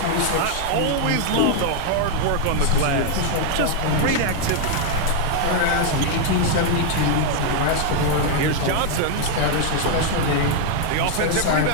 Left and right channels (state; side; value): different; both; correlation 0.00